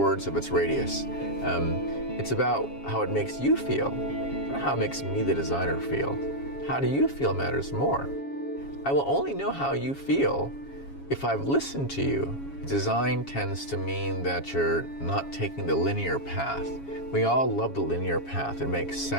of its radius. It's about how it makes you feel, not how it makes me, the designer, feel. How do you feel matters more. I will only know how you feel if I've listened to you. Design tends to mean that you're not taking the linear path. We all love the linear path. It makes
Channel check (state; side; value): late; right; 7.2 ms